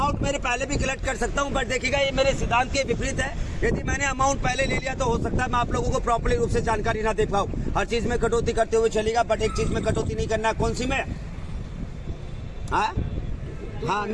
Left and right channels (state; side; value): identical; both; correlation 1.00